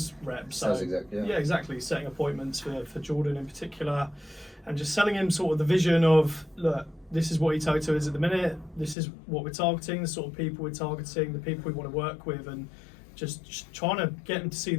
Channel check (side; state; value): right; drops out; at 9.0 s